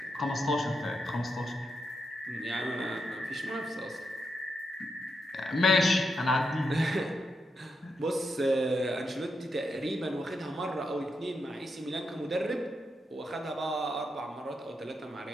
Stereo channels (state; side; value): normal; both; correlation 0.84